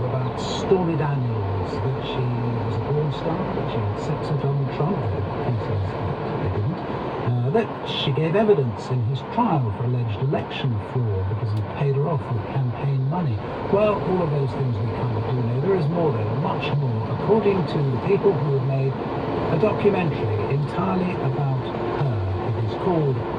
about Stormy Daniels? That she was a porn star, that she had sex with Donald Trump? He says that they didn't. That she gave evidence in his trial for alleged election fraud because he paid her off with campaign money. Well, all of those things we kind of do know. There is more though, much more. According to the people who have made a documentary entirely about her. It is called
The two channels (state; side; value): identical; both; correlation 1.00